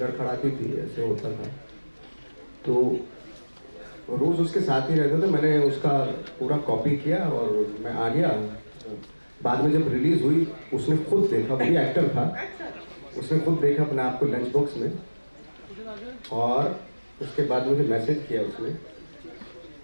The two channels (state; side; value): inverted; both; correlation -1.00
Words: थी, ऐसे होता था, तो रोज उसके साथ ही रहता था। मैंने उसका पूरा कॉपी किया और मैं आ गया। बाद में जब रिलीज हुई उसने खुद देखा, वो भी एक्टर था, अच्छा। उसने खुद देखा अपने आप को लंच बॉक्स में, और उसके बाद मुझे मैसेज किया